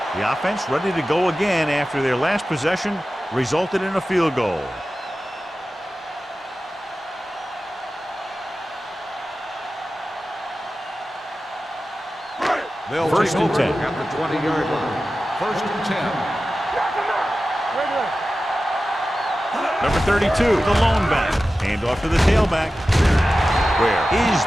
The offense ready to go again after their last possession resulted in a field goal. They'll First take and over 10. at the 20-yard line. First and 10. Number 32, the lone back. Hand off to the tailback. Where is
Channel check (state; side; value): normal; both; correlation 0.94